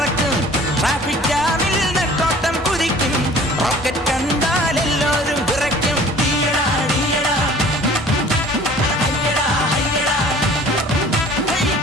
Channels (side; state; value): both; normal; correlation 0.49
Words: ട്രാഫിക് ജാമിൽ നെട്ടോട്ടം കുതിക്കും, റോക്കറ്റ് കണ്ടാൽ എല്ലാവരും വിറയ്ക്കും.